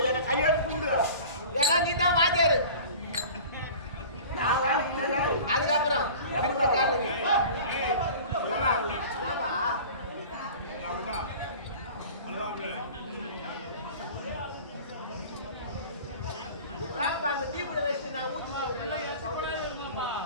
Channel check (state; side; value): inverted; both; correlation -0.40